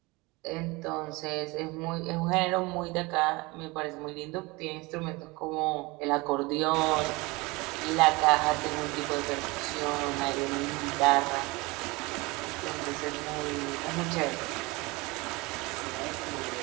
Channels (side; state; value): left; quieter; 24.1 dB